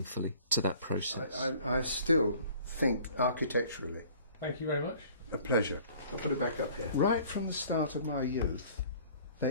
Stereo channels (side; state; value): both; inverted; correlation -0.51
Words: to that process. I still think architecturally. Thank you very much. A pleasure. I'll put it back up here. Right from the start of my youth,